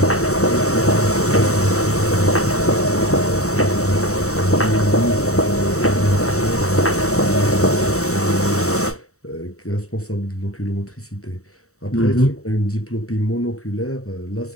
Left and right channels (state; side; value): late; right; 0.64 ms